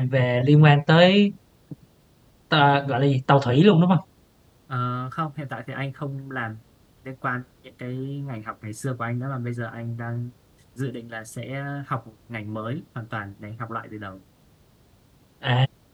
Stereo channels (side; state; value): both; identical; correlation 1.00